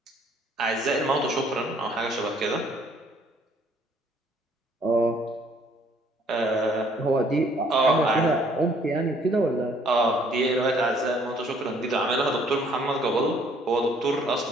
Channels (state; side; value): normal; both; correlation 0.62